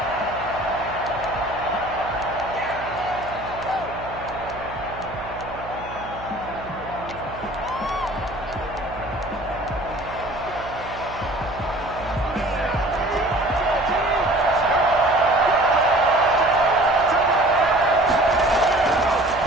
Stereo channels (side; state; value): right; noise; hum, 15 dB below the sound